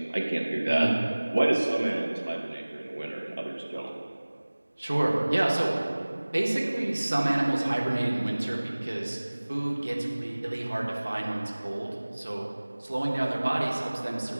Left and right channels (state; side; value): inverted; both; correlation -1.00